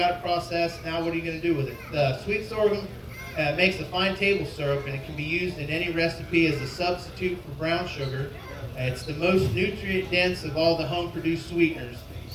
it processed. Now what are you going to do with it? The sweet sorghum makes a fine table syrup, and it can be used in any recipe as a substitute for brown sugar. It's the most nutrient dense of all the home produced sweeteners,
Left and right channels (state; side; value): identical; both; correlation 1.00